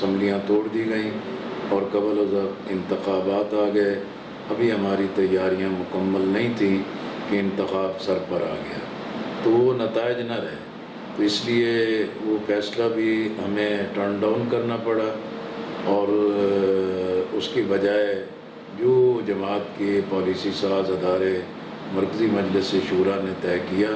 توڑ دی گئیں اور قبل از وقت انتخابات آ گئے۔ ابھی ہماری تیاریاں مکمل نہیں تھیں کہ انتخاب سر پر آ گیا، تو وہ نتائج نہ رہے، تو اس لیے وہ فیصلہ بھی ہمیں ٹرن ڈاؤن کرنا پڑا، اور اس کی بجائے جو جماعت کے پالیسی ساز ادارے مرکزی مجلس شورا نے طے کیا،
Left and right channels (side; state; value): both; identical; correlation 1.00